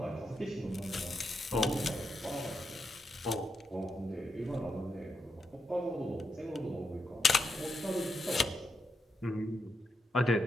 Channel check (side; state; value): both; normal; correlation 0.83